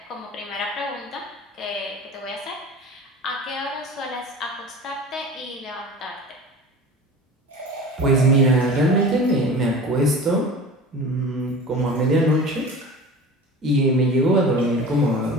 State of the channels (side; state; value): both; normal; correlation 0.37